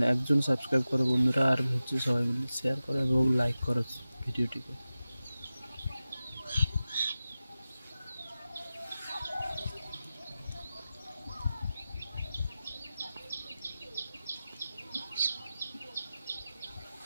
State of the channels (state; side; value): inverted; both; correlation -0.95